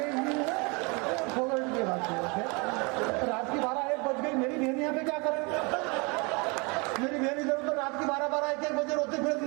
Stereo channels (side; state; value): left; quieter; 29.6 dB